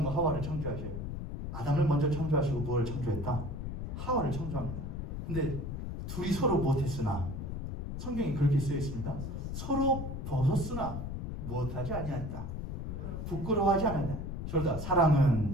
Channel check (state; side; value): noise; left; rumble, 5 dB below the sound